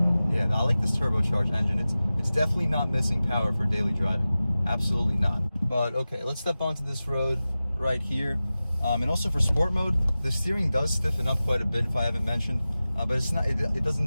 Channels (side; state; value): both; inverted; correlation -0.96